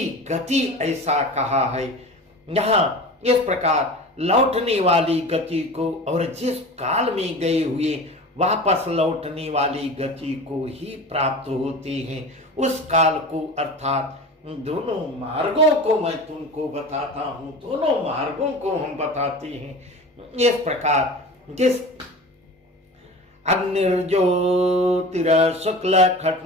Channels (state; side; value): normal; both; correlation 0.34